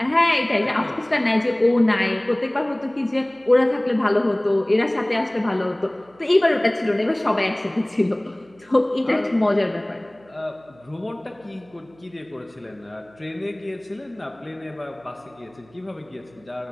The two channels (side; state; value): right; noise; hum, 29 dB below the sound